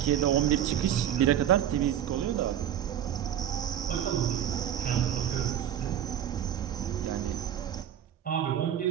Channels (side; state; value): left; quieter; 10.2 dB